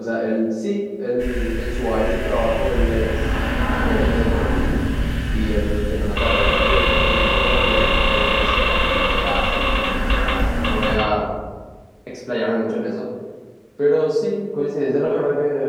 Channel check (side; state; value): both; identical; correlation 1.00